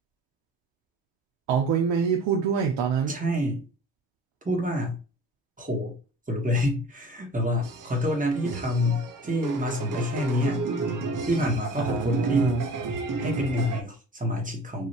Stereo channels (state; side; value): normal; both; correlation 0.43